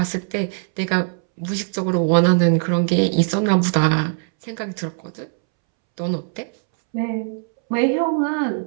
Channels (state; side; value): silent; left; 65 dB below the other